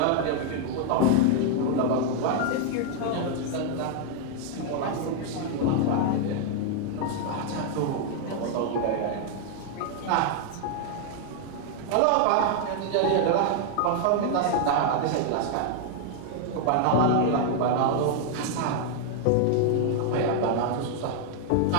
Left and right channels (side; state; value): both; different; correlation 0.00